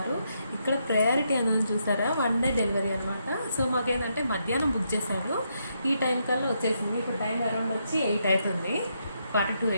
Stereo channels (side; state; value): both; inverted; correlation -0.79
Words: ఇక్కడ ప్రయారిటీ అనేది చూసారా, 1 డే డెలివరీ అనమాట. సో మాకేంటంటే మధ్యాహ్నం బుక్ చేశాను, ఈ టైం కల్లా వచ్చేసింది. ఇప్పుడు టైం అరౌండ్ వచ్చి 8 అవుతుంది,